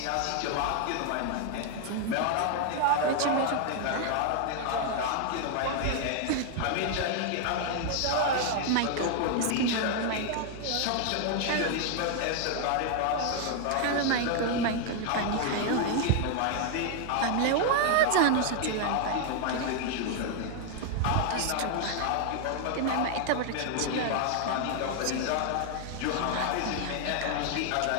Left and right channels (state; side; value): different; both; correlation 0.00